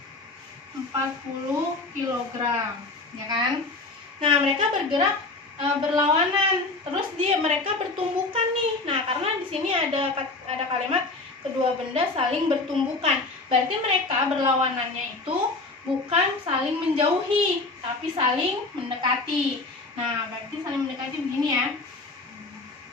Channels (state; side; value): quieter; right; 3.4 dB